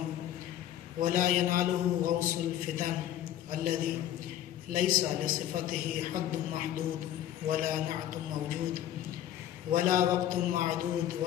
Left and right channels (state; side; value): quieter; right; 11.8 dB